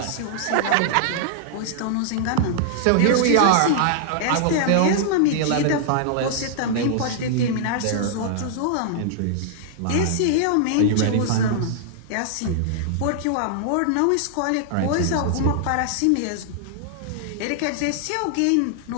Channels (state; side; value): different; both; correlation -0.01